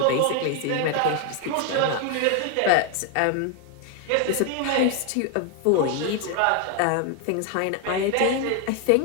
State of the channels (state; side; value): different; both; correlation 0.01